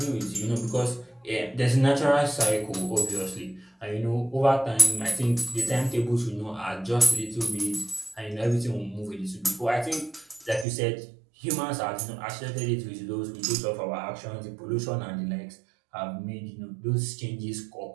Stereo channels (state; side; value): drops out; left; at 10.7 s